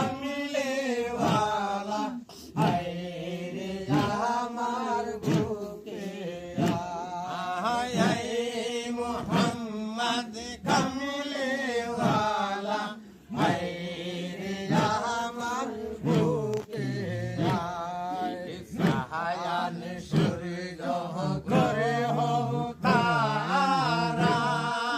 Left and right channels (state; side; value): identical; both; correlation 1.00